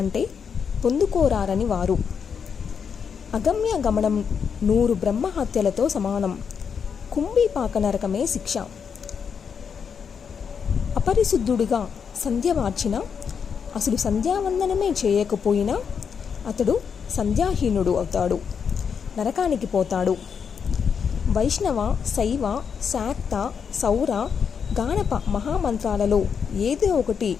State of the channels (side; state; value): right; quieter; 6.7 dB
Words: అంటే పొందుకోరారని వారు. అగమ్య గమనం 100 బ్రహ్మహత్యలతో సమానం. కుంభీపాక నరకమే శిక్ష. అపరిశుద్ధుడిగా సంధ్య మార్చిన, అసలు సంధ్యావందనమే చేయకపోయినా అతడు సంధ్యాహీనుడు అవుతాడు, నరకానికి పోతాడు. వైష్ణవ, శైవ, శాక్త, సౌర, గాణప మహామంత్రాలలో ఏదో ఒకటి